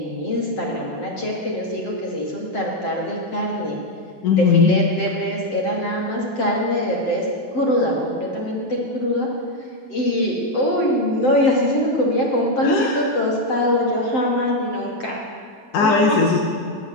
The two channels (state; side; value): late; right; 7.7 ms